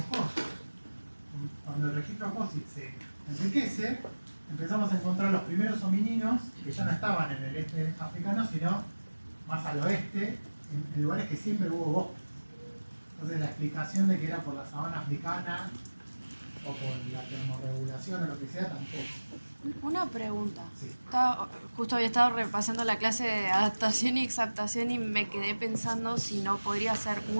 Cuando el registro fósil se enriquece, empezamos a encontrar los primeros homininos que ya no estaban en el este africano, sino más al oeste, en lugares que siempre hubo bosques. Entonces la explicación de que era por la sabana africana o por la termorregulación o lo que sea, tampoco. Una pregunta. Sí. Justo había estado repasando la clase de adaptación y exaptación y me quedé pensando si no podría ser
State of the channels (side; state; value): both; inverted; correlation -1.00